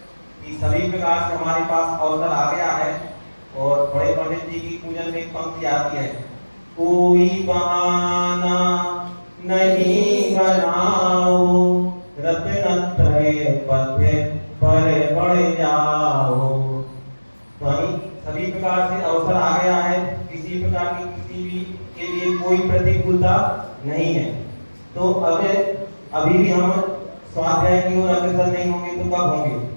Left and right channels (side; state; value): both; inverted; correlation -1.00